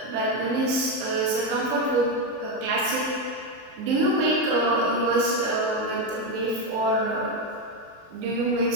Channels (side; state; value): left; late; 23 ms